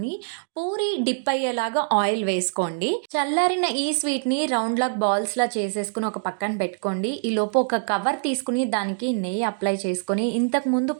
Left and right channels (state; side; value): silent; left; digital silence